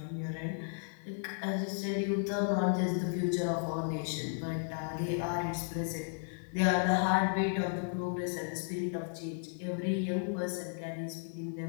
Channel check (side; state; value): right; silent; digital silence